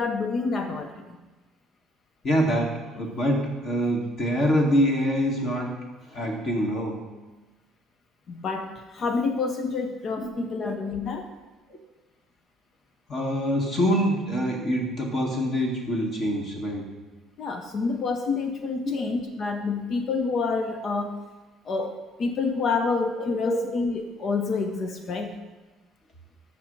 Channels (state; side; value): normal; both; correlation 0.62